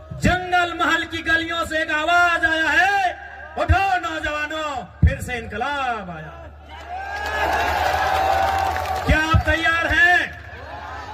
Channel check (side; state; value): both; identical; correlation 1.00